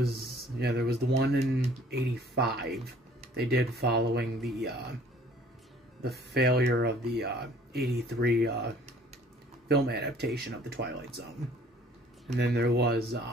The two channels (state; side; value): normal; both; correlation 0.55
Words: the one in 85 they did following the failure of the 83 film adaptation of the Twilight Zone. And then there was